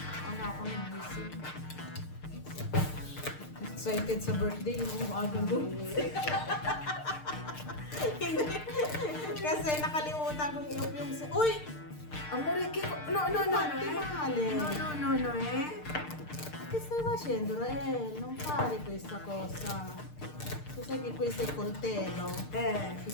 Maaga ako nagising. Excited sa birthday, yung maaga doon. Kasi nakalimutan kong iup yung... Uy! amore, kiko. No, Che stai facendo, Rael? Non fare questa cosa. Tu sai che questo è il coltello. Ti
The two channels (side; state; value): right; late; 6.6 ms